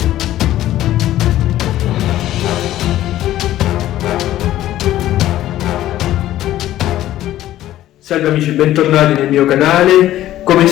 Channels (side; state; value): right; quieter; 13.8 dB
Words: Salve amici, bentornati nel mio canale. Come